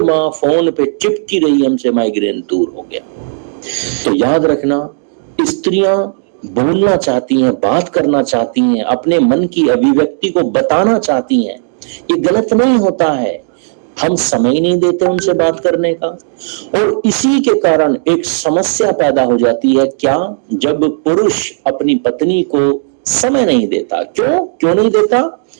माँ फोन पे चिपकी रही हमसे, माइग्रेन दूर हो गया। तो याद रखना, स्त्रियां बोलना चाहती हैं, बात करना चाहती हैं, अपने मन की अभिव्यक्ति को बताना चाहती हैं, ये गलत नहीं होता है। हम समय नहीं देते उनसे बात करने का, और इसी के कारण एक समस्या पैदा हो जाती है। क्या? जब पुरुष अपनी पत्नी को समय नहीं देता। क्यों नहीं देता?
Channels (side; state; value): left; silent; digital silence